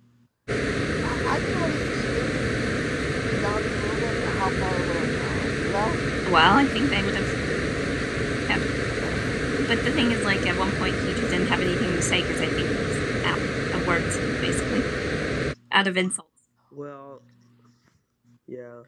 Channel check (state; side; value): identical; both; correlation 1.00